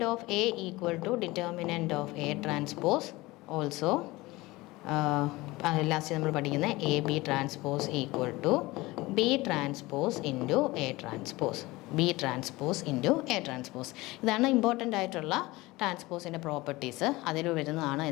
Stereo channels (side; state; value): right; quieter; 20.6 dB